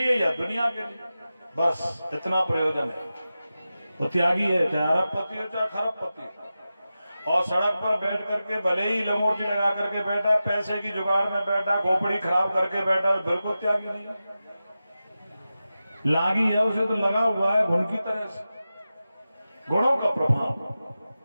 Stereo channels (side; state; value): both; inverted; correlation -0.93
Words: या दुनिया के लिए, बस इतना प्रयोजन है। वो त्यागी है, चाहे अरबपति हो चाहे खरबपति हो। और सड़क पर बैठ करके भले ही लंगोटी लगा करके बैठा, पैसे की जुगाड़ में बैठा, खोपड़ी खराब करके बैठा, बिल्कुल त्यागी नहीं है। लागी है, उसे तो लगा हुआ है घुन की तरह से, गुणों का प्रभाव।